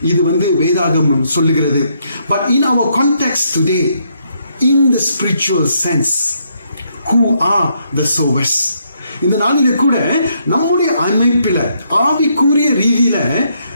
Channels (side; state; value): both; inverted; correlation -0.74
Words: இது வந்து வேதாகமம் சொல்லுகிறது. But in our context today, in the spiritual sense, who are the sowers? இந்த நாளில கூட நம்முடைய அமைப்பில ஆவிக்குரிய ரீதியில